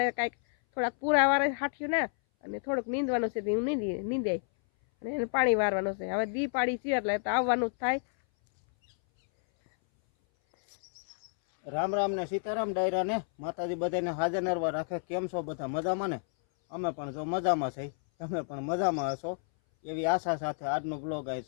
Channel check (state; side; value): silent; right; 58 dB below the other